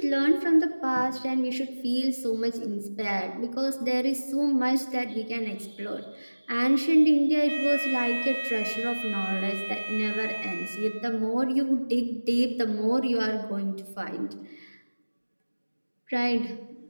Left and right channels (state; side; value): inverted; both; correlation -1.00